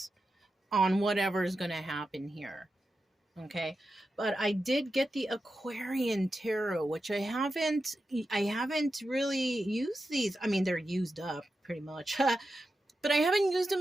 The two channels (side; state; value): both; normal; correlation 0.90